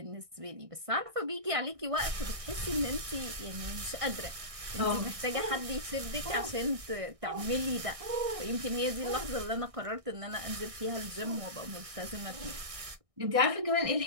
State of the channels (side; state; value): left; late; 1.6 ms